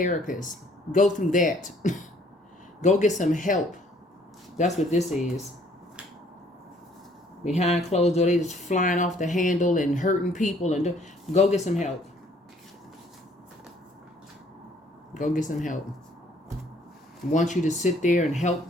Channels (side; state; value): both; normal; correlation 0.61